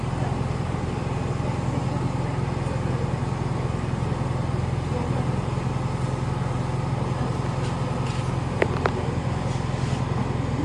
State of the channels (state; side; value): identical; both; correlation 1.00